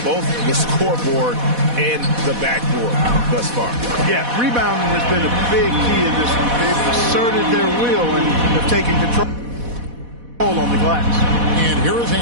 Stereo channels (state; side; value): late; left; 4.1 ms